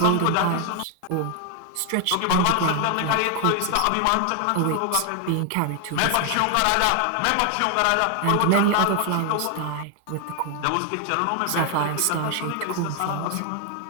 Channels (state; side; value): different; both; correlation 0.00